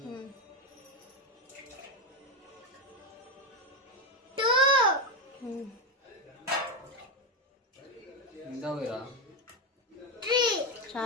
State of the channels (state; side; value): normal; both; correlation 0.08